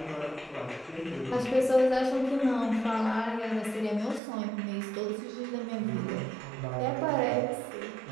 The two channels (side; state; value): left; drops out; at 4.2 s